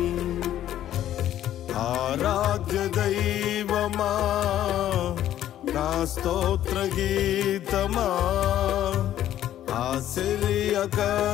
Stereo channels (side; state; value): right; quieter; 12.0 dB